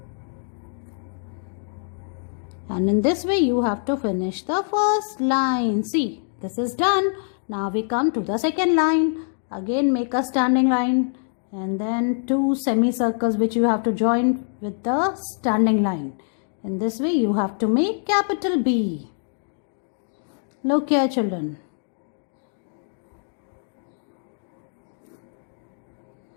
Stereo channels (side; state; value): right; silent; digital silence